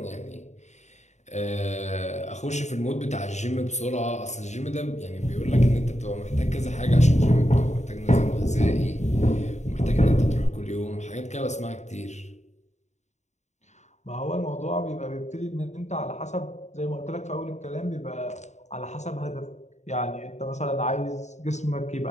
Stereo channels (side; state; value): right; late; 0.34 ms